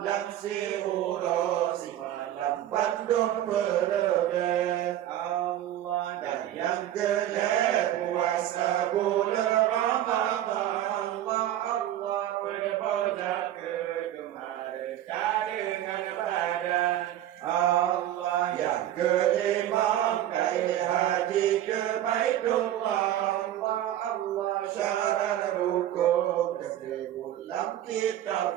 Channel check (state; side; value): quieter; left; 12.3 dB